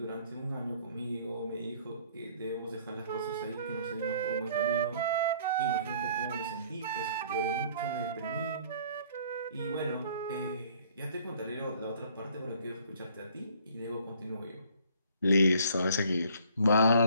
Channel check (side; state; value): both; inverted; correlation -0.58